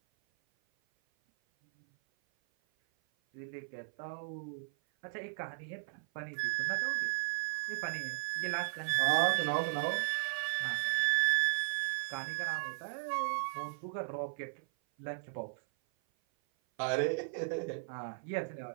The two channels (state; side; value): silent; left; 54 dB below the other